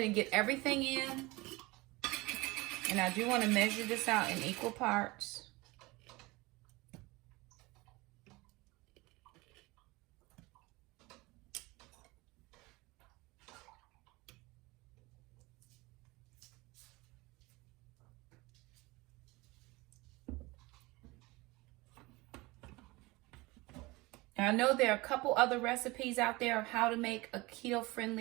and get everything in. And I do want to measure this out in equal parts. And I know there are a couple other recipes out there of how to make a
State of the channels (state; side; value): quieter; left; 22.7 dB